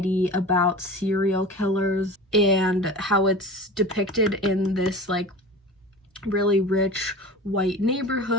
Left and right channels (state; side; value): normal; both; correlation 0.35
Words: about serial killers and how it's depicted in this like really rich white